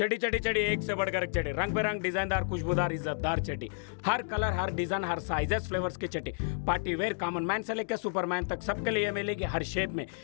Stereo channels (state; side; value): silent; right; digital silence